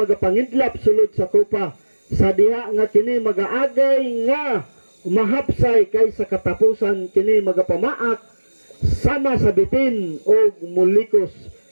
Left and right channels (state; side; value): inverted; both; correlation -1.00